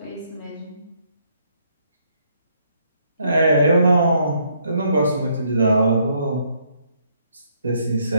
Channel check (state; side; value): inverted; both; correlation -0.71